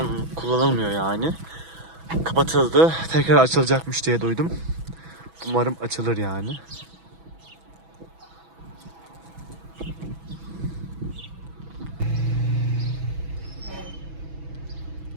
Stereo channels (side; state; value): left; late; 6.1 ms